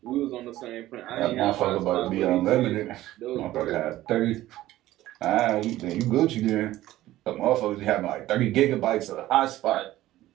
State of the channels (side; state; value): left; quieter; 15.3 dB